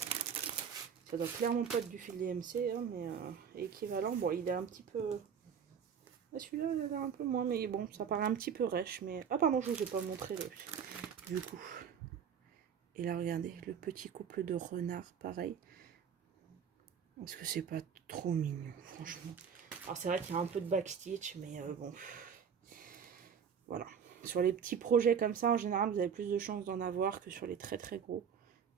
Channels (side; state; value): left; quieter; 7.3 dB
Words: Ça doit clairement pas être du fil DMC, hein, mais équivalent. Bon, il est un petit peu... Celui-là, il a l'air un peu moins, mais bon, ça paraît un petit peu rêche. Mais... Ah pardon, je ne vous ai pas montré du coup. Et là, regardez, le petit couple de renards, pareil. Est-ce que c'est pas trop mignon, franchement? Alors c'est vrai qu'il y a un peu de backstitch, mais bon. Voilà. Sur les petits projets comme ça, en général, vous avez plus de chances d'en avoir que sur les très très gros.